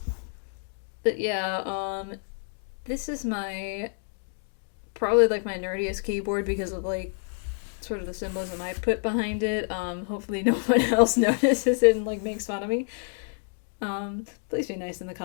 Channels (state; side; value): silent; right; 59 dB below the other